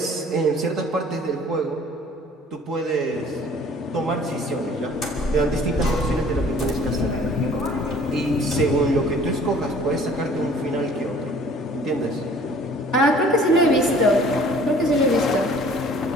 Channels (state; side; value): normal; both; correlation 0.52